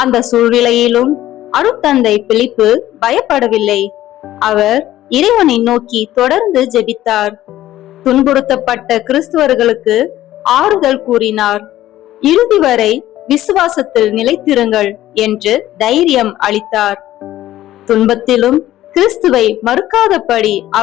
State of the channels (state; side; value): quieter; right; 14.0 dB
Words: சூழ்நிலையிலும் அருட்தந்தை பிலிப்பு பயப்படவில்லை. அவர் இறைவனை நோக்கி தொடர்ந்து ஜெபித்தார். துன்புறுத்தப்பட்ட கிறிஸ்துவர்களுக்கு ஆறுதல் கூறினார். இறுதி வரை விசுவாசத்தில் நிலைத்திருங்கள் என்று தைரியம் அளித்தார். துன்பத்திலும் கிறிஸ்துவை மறுக்காதபடி